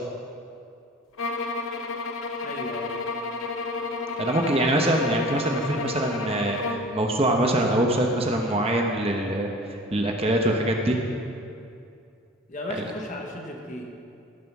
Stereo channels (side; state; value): both; normal; correlation 0.42